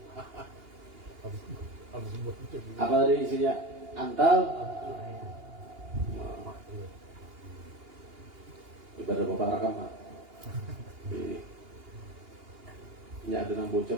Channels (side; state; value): left; late; 2.8 ms